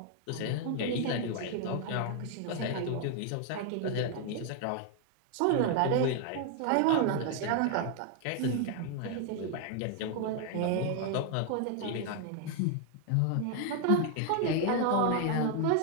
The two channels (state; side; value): different; both; correlation 0.00